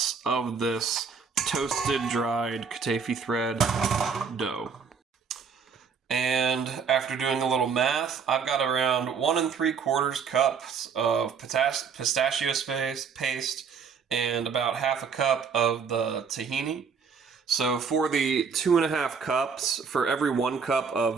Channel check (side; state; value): left; quieter; 6.0 dB